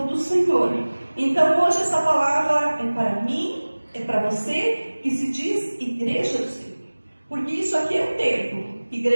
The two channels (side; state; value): both; inverted; correlation -1.00